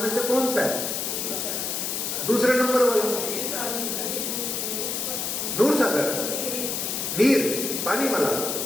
में से कौन सा है? दूसरे नंबर वाला दूर सागर, नीर, पानी वाला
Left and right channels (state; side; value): noise; left; hiss, 2 dB below the sound